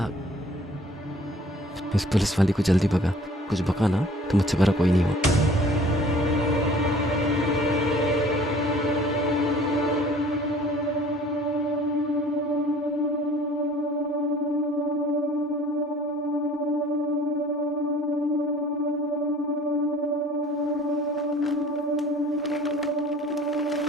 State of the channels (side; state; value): both; normal; correlation 0.51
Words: इस पुलिस वाली को जल्दी भगा। कुछ बका ना तो मुझसे बड़ा कोई नहीं हो।